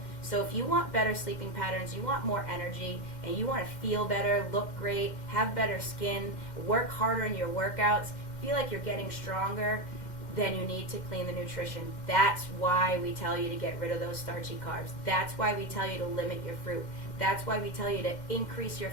So if you want better sleeping patterns, you want more energy, and you want to feel better, look great, have better skin, work harder in your workouts, feel like you're getting stronger, then you need to clean the nutrition. That's why we tell you to get rid of those starchy carbs. That's why we tell you to limit your fruit. That's why we tell you to increase your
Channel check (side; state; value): right; late; 2.1 ms